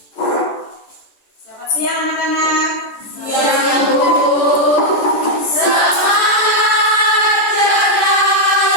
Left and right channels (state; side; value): late; right; 14 ms